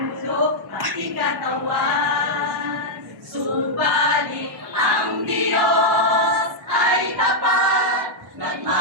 pati katawan. Subalit ang Diyos ay tapat,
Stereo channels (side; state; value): left; late; 1.1 ms